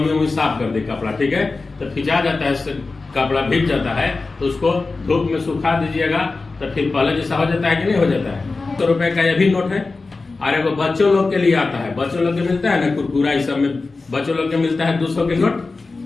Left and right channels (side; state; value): right; quieter; 3.8 dB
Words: साफ कर दे कपड़ा, ठीक है? तो खिंचा जाता है, कपड़ा भीग जाता है, तो उसको धूप में सुखा दीजिएगा, तो फिर पहले जैसा हो जाता है कि नहीं हो जाता है? 100 रुपए का यह भी नोट है। और एगो बच्चों लोग के लिए आता है, बच्चों लोग के मिलता है ना कुरकुरा, इस सब में बच्चों लोग के मिलता है 200 के नोट,